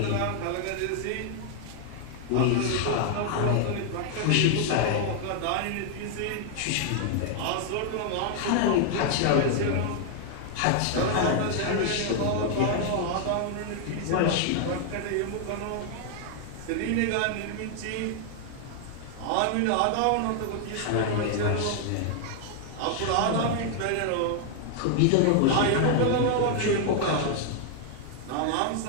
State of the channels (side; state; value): both; different; correlation 0.00